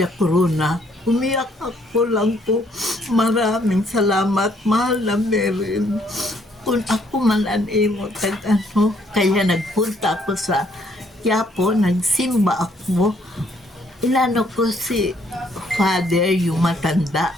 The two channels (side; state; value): both; normal; correlation 0.67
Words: Corona. Umiyak ako lang po. Maraming salamat, mahal na Merin. Kung ako man kaya nagpunta ako sa Quiapo, nagsimba ako. Inano ko si Father, yung matanda.